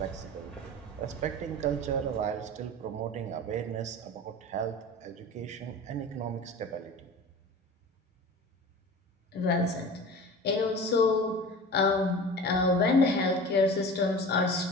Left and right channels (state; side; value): normal; both; correlation 0.36